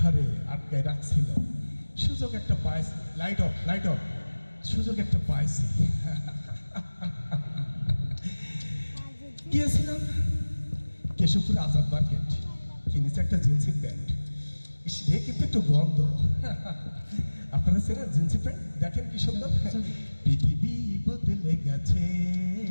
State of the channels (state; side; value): inverted; both; correlation -1.00